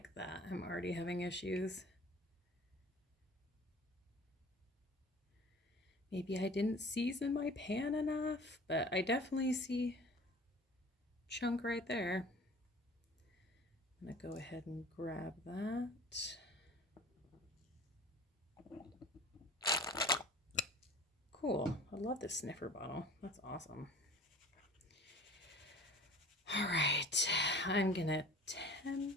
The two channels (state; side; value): normal; both; correlation 0.44